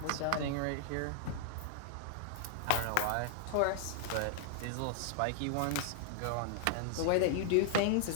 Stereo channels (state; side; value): different; both; correlation -0.01